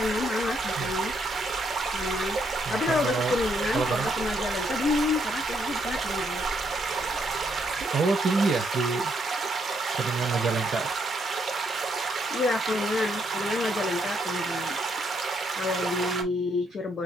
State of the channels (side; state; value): both; normal; correlation 0.74